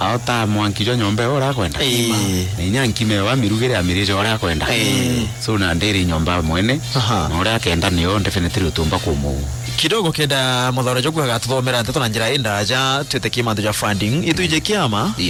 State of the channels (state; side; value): identical; both; correlation 1.00